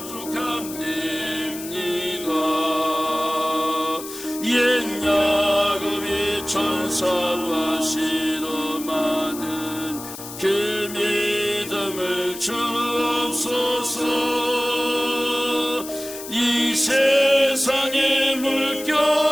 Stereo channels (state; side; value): noise; left; hiss, 12 dB below the sound